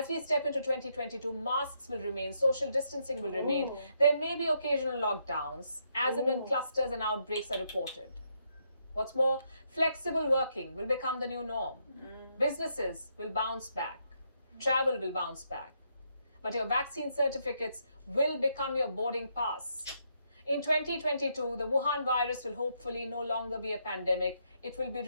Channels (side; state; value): both; inverted; correlation -0.76